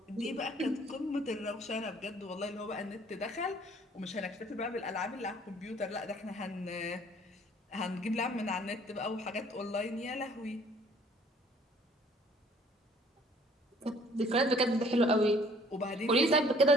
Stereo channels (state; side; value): normal; both; correlation 0.57